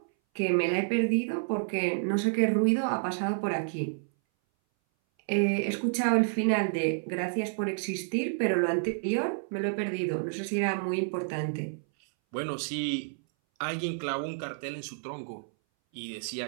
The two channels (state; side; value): silent; left; 58 dB below the other